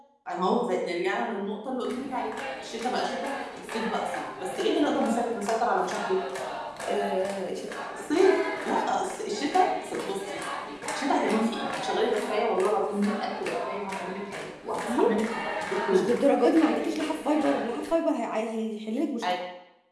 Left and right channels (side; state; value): both; identical; correlation 1.00